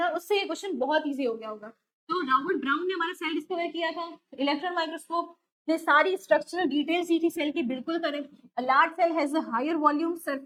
उससे ये क्वेश्चन बहुत इजी हो गया होगा। तो रॉबर्ट ब्राउन ने हमारा सेल डिस्कवर किया था, इलेक्ट्रॉन माइक्रोस्कोप ने सारी स्ट्रक्चरल डिटेल्स दी थी सेल की, बिल्कुल correct. A large cell has a higher volume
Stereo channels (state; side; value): identical; both; correlation 1.00